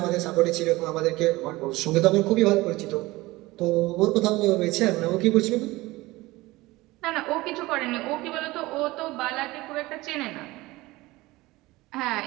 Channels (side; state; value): left; quieter; 20.0 dB